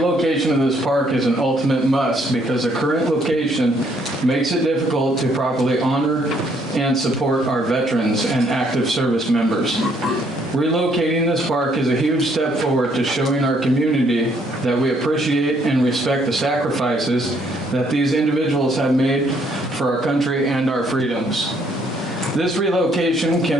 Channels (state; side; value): normal; both; correlation 0.68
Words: of this park is an ultimate must because the current location makes it difficult to properly honor and support our veterans and active service members. Relocating this park is a huge step forward to showing our community that we appreciate and respect the sacrifices that these individuals have made for our country and our freedoms. This relocation